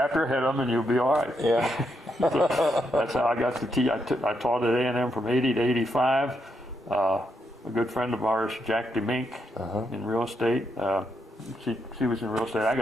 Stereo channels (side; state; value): both; normal; correlation 0.80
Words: ahead of them and you'll be all right. Yeah. So that's how I got to teach. I taught at A&M from 80 to 85. A good friend of ours, Jack DeMink, in real estate. She was in real estate. I